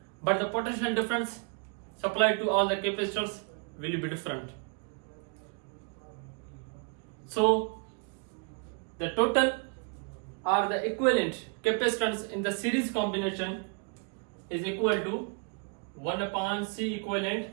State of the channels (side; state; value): left; quieter; 38.6 dB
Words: but the potential difference supplied to all the capacitors will be different. So the total or the equivalent capacitance in the series combination is equal to 1 upon C equivalent